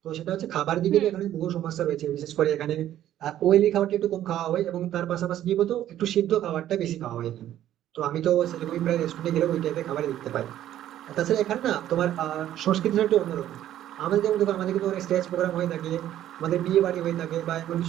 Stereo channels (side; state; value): left; quieter; 12.2 dB